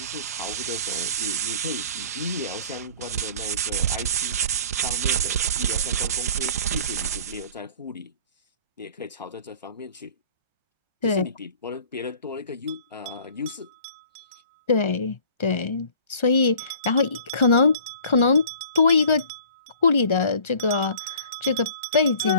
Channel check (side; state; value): both; inverted; correlation -0.49